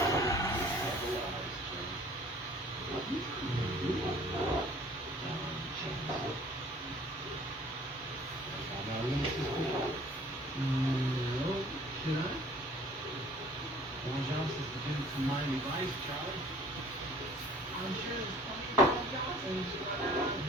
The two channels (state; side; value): normal; both; correlation 0.52